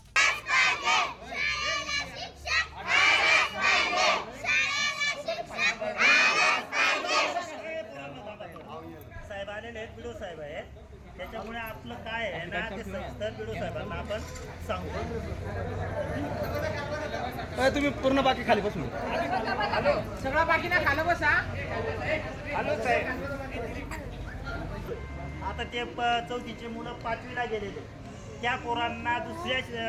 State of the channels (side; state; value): both; identical; correlation 1.00